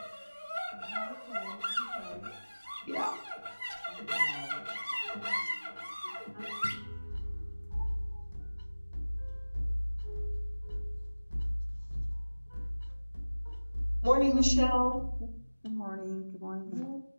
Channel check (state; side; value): inverted; both; correlation -1.00